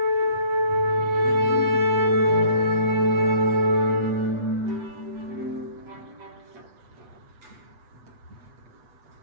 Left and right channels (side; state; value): left; late; 8.2 ms